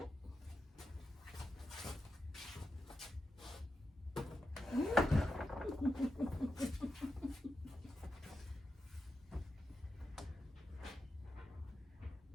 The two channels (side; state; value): both; normal; correlation 0.88